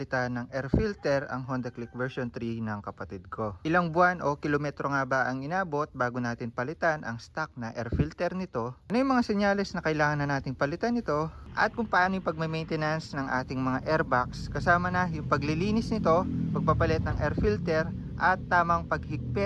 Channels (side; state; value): both; identical; correlation 1.00